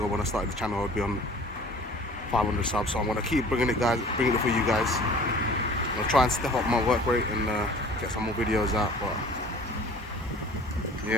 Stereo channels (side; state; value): both; normal; correlation 0.47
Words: when I started the channel I'd be on 500 subs. So I'm gonna keep bringing it for you guys. I'm gonna try and step up my work rate and get some more videos out. But